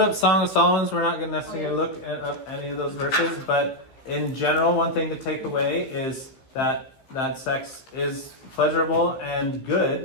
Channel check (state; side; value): late; right; 15 ms